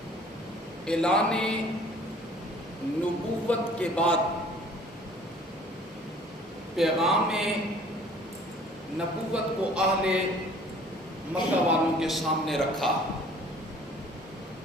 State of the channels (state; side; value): normal; both; correlation 0.53